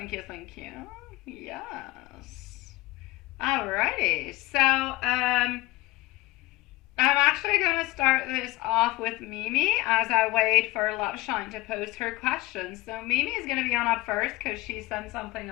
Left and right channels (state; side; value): quieter; right; 19.6 dB